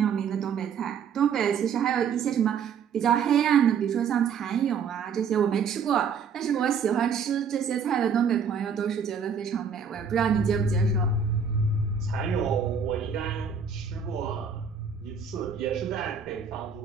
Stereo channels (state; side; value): quieter; left; 6.5 dB